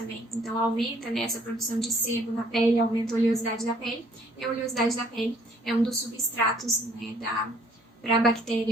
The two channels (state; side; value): normal; both; correlation 0.61